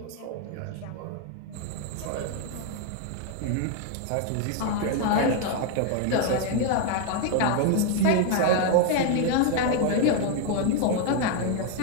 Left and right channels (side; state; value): both; different; correlation 0.00